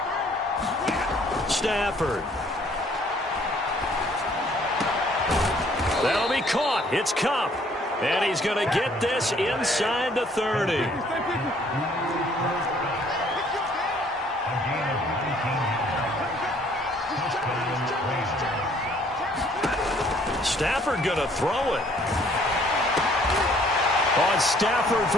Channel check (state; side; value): normal; both; correlation 0.61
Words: Stafford. That'll be caught. It's Kupp. And he's going to get this inside the 30. Stafford going to throw it. On Stafford